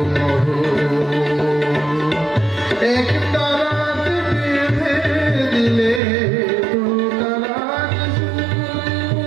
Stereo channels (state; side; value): drops out; left; at 6.0 s